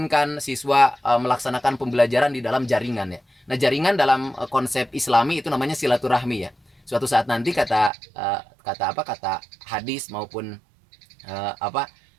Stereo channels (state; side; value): drops out; left; at 7.9 s